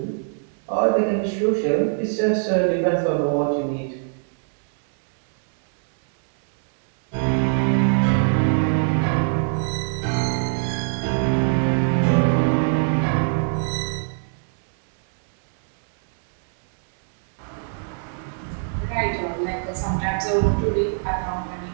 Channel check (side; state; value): left; silent; 62 dB below the other